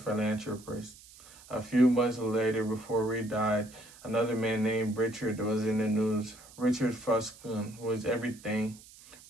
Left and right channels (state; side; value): noise; right; hiss, 21 dB below the sound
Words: A few months later, before Reed died, another man named Richard was in the news. Richard Fuscon was everything